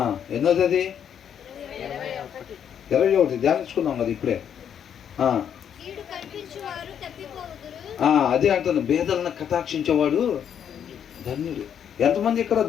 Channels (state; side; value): quieter; right; 8.7 dB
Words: ఎన్నోది అది 21 ధ్యానించుకున్నాం కదా ఇప్పుడే. అదే అంటాను, పేదలను కటాక్షించేవాడు ధన్యుడు. ఎంతమంది ఇక్కడ